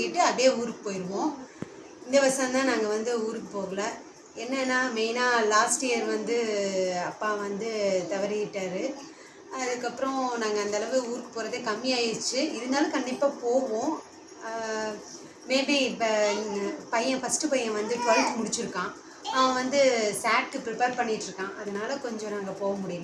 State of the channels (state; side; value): identical; both; correlation 1.00